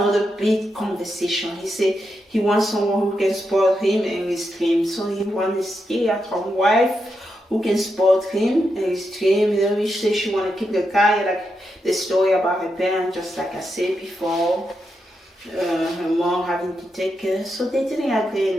big conversation. He said he wants someone who can support him and his dream. So he wants a stay-at-home wife who can support him and his dream. You know, she said she want to keep the guy, like the story about her parents, just like I said before. Her mom having to take care. So they didn't agree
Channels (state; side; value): normal; both; correlation 0.85